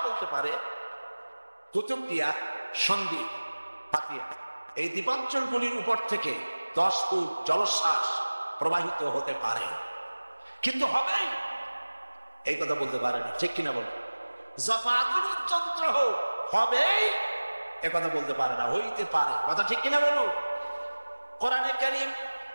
বলতে পারে কুতুবদিয়া, সন্দ্বীপ, হাতিয়া এই দ্বীপাঞ্চলগুলির উপর থেকে 10 ফুট জলোচ্ছ্বাস প্রবাহিত হতে পারে, কিন্তু হবেই এই কথা বলতে পারে না, ঠিক কিনা বল? যত আধুনিক যন্ত্র হোক, হবেই এ কথা বলতে পারে না, হইতে পারে, কথা ঠিক কিনা বলুন? কোরআনে কারীম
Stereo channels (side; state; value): both; inverted; correlation -1.00